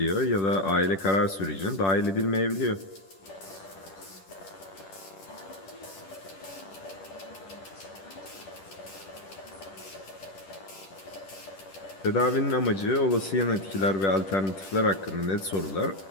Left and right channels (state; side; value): late; right; 10 ms